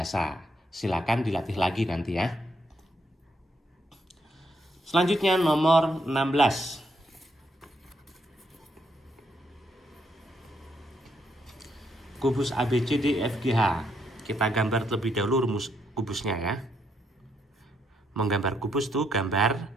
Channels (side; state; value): both; normal; correlation 0.75